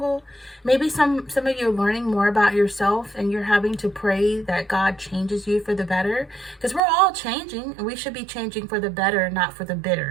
Maybe some of you are learning more about yourself, and you're having to pray that God changes you for the better, because we're all changing, and we should be changing for the better, not for the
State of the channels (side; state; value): left; drops out; at 6.8 s